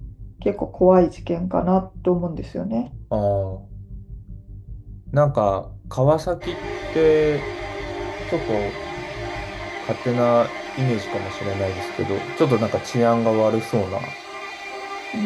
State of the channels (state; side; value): identical; both; correlation 1.00